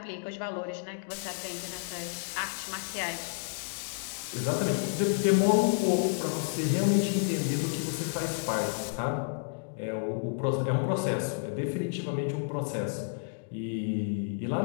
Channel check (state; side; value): silent; right; digital silence